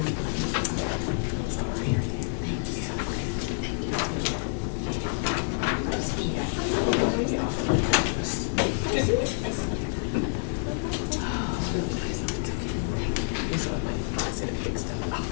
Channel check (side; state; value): right; silent; 59 dB below the other